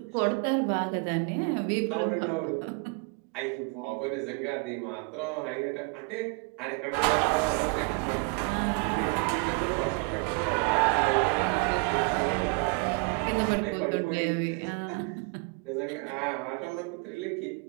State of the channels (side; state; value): left; quieter; 31.9 dB